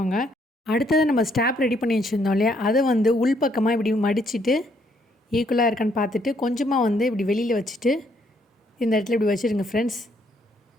அடுத்தது நம்ம ஸ்டாப் ரெடி பண்ணி வச்சுருந்தோம் இல்லையா, அதை உள்பக்கமாக இப்படி மடிச்சுட்டு ஈக்குவலாக இருக்கான்னு பார்த்துட்டு கொஞ்சமாக இப்படி வெளியில் வச்சுட்டு இந்த இடத்துல இப்படி வச்சுருங்க ஃப்ரெண்ட்ஸ்.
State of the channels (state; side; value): normal; both; correlation 0.70